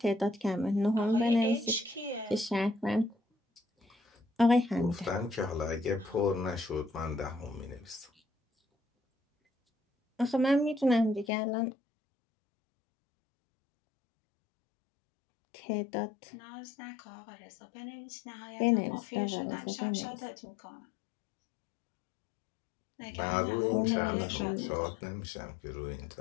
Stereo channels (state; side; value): drops out; right; at 11.3 s